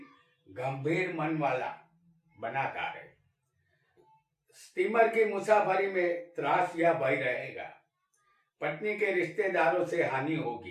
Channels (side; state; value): both; identical; correlation 1.00